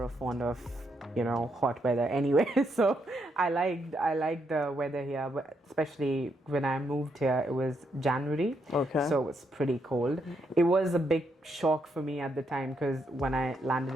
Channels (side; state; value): both; normal; correlation 0.78